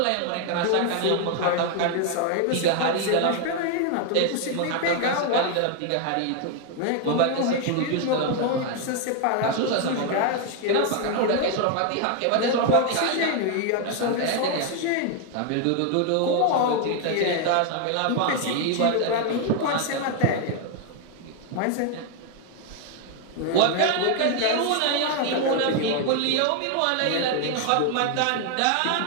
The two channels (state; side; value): different; both; correlation 0.01